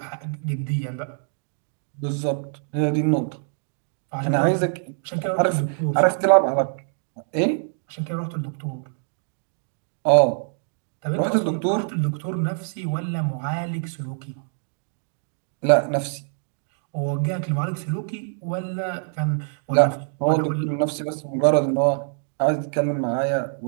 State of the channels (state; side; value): silent; left; digital silence